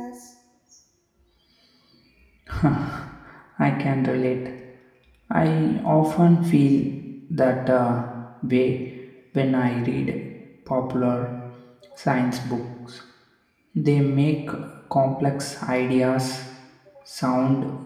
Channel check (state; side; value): identical; both; correlation 1.00